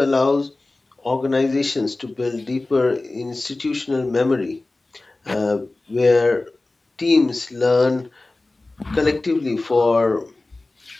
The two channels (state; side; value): quieter; right; 3.1 dB